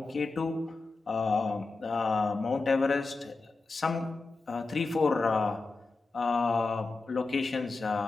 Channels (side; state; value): right; quieter; 3.7 dB